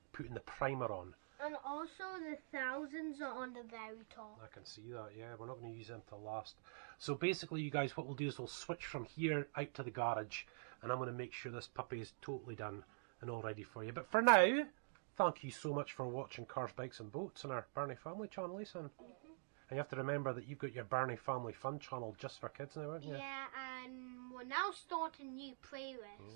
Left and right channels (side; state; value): left; silent; digital silence